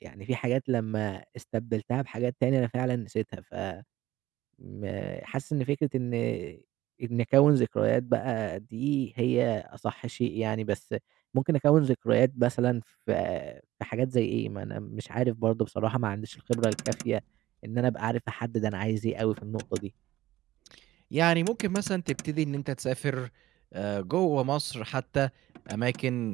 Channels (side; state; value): left; quieter; 15.6 dB